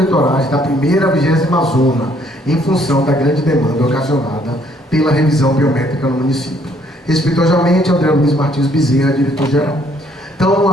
da primeira à 20ª zona, em função da grande demanda ocasionada pela revisão biométrica no município. Respeitosamente, André Luiz Martins Bezerra, diretor-geral. Então, eu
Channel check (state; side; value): normal; both; correlation 0.65